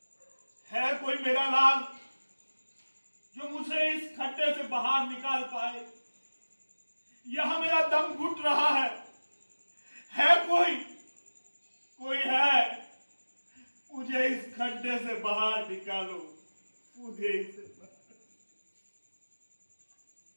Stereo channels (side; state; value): both; inverted; correlation -1.00